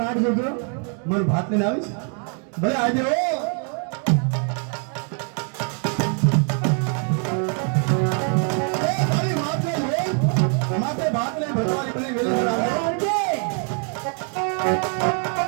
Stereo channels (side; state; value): left; quieter; 39.9 dB